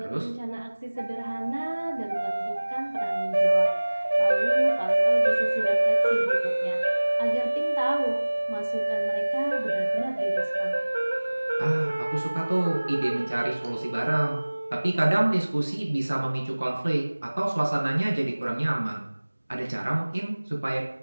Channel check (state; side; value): inverted; both; correlation -1.00